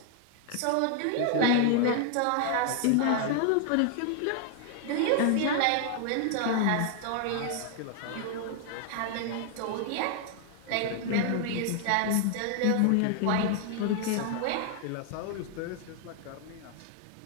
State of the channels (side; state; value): both; different; correlation 0.00